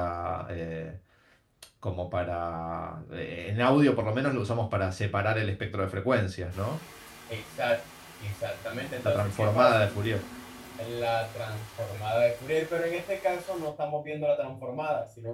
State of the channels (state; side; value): identical; both; correlation 1.00